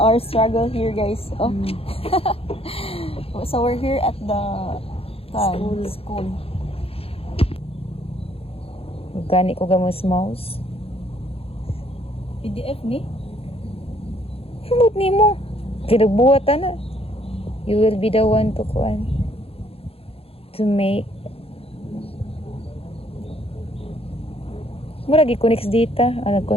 struggle here, guys. Oh. So we're here at the school. Gani ko gamos mouse. PDF ni? Himot ni mo. Kinagbuhatan na. You will be the one to kuan. To make. Mura gi-connect data.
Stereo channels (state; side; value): late; right; 0.28 ms